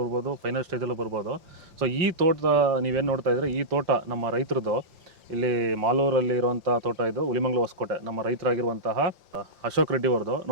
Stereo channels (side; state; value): left; late; 5.7 ms